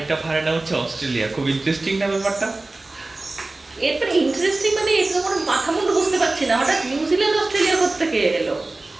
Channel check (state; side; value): quieter; left; 3.1 dB